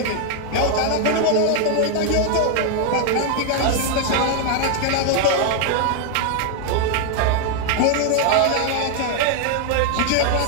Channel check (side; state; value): both; different; correlation 0.00